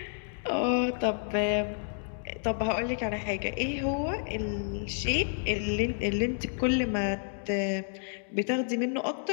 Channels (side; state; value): right; silent; digital silence